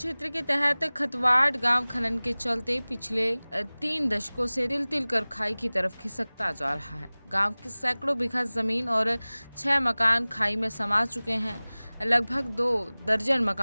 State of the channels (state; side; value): inverted; both; correlation -1.00